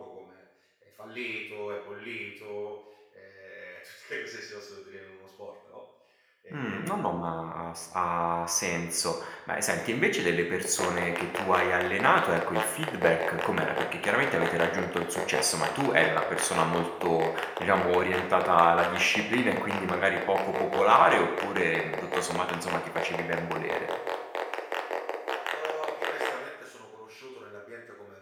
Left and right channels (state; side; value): identical; both; correlation 1.00